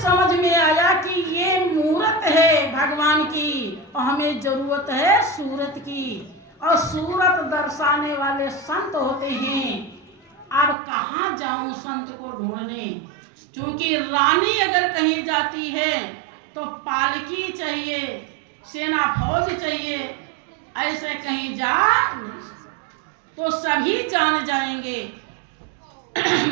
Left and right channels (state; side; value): drops out; left; at 10.8 s